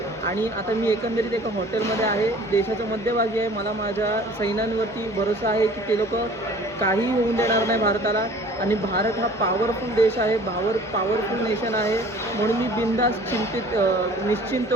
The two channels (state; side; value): normal; both; correlation 0.49